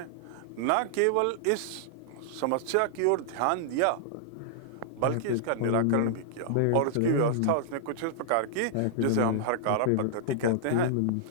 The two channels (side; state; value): both; different; correlation -0.01